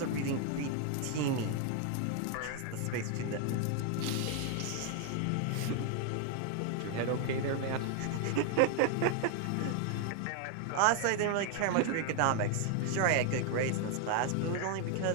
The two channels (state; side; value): different; both; correlation 0.00